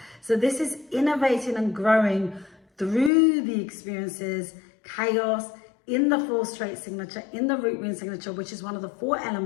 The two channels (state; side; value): drops out; right; at 3.1 s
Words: So this is innovating and growing through the experiences, chaos, in the four straight signature, in the root wound signature, which is one of the 4